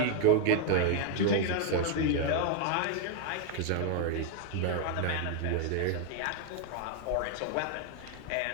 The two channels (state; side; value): different; both; correlation 0.00